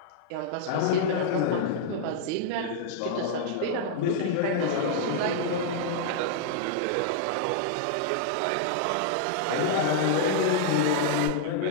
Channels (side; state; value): both; different; correlation -0.01